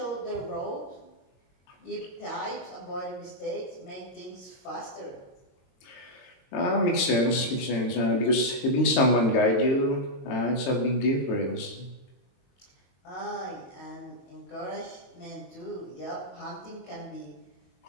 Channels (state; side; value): late; right; 22 ms